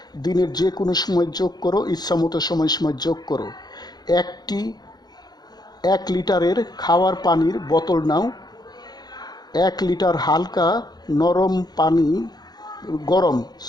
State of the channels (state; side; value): late; right; 0.20 ms